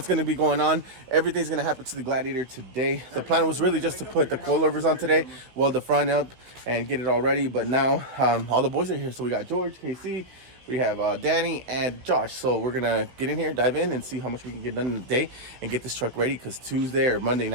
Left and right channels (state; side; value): late; left; 16 ms